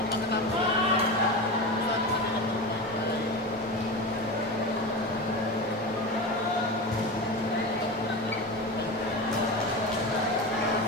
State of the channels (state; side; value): normal; both; correlation 0.24